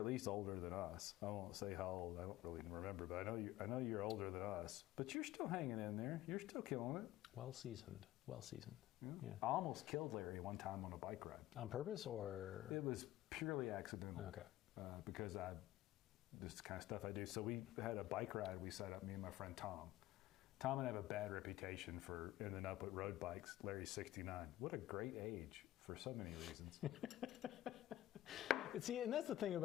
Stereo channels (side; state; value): right; quieter; 15.0 dB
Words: older than us. I won't say how old. I don't really remember, but I know you're older than us. But you're still hanging in there. You're still killing it. Well seasoned. Yeah. I almost killed Larry one time on a bike ride. On purpose, or it was purely accidental. Okay. Because this is the kind of stuff I do. So we had a bike ride. We set up, me and my friend Tom. Tom and I have a bad reputation for ending up with road bikes. Larry's 69. What a great age for so many reasons. See, and that's the thing